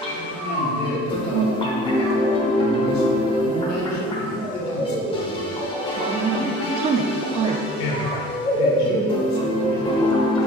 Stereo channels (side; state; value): both; normal; correlation 0.47